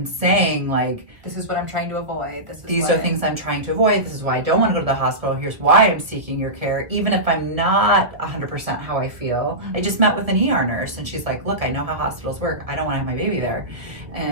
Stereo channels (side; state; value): left; late; 1.3 ms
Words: saying like, this is what I'm trying to avoid. These are things I'm trying to avoid. This is why I don't want to go to the hospital. Here's why I'm seeking your care. Even if I'm not 100% how I feel. I just met with an ER nurse and she's like, look, I know how hospitals work. I don't want to have my baby there.